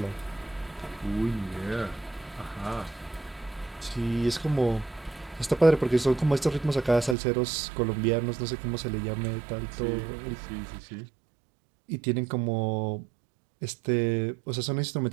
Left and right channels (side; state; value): left; drops out; at 7.2 s